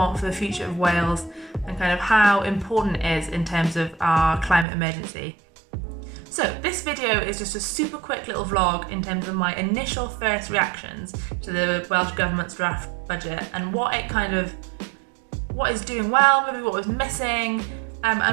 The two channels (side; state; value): left; drops out; at 4.7 s